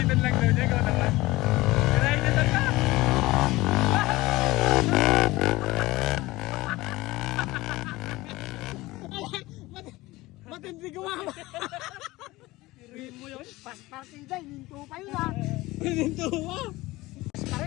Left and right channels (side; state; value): right; quieter; 19.6 dB